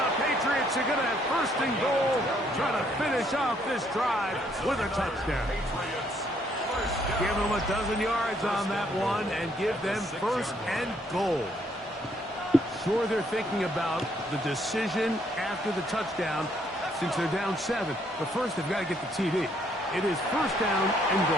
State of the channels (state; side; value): normal; both; correlation 0.69